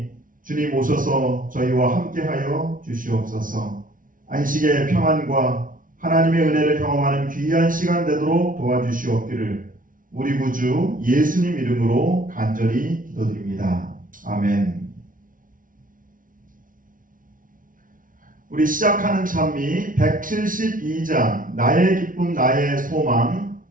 주님 오셔서 저희와 함께하여 주시옵소서. 안식의 평안과 하나님의 은혜를 경험하는 귀한 시간 되도록 도와주시옵기를 우리 구주 예수님 이름으로 간절히 기도드립니다. 아멘. 우리 시작하는 찬미 172장 나의 기쁨 나의 소망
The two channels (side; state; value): left; late; 0.39 ms